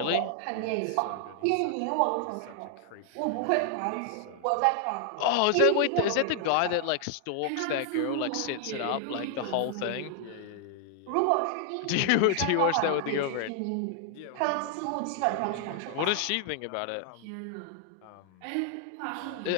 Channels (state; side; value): different; both; correlation 0.00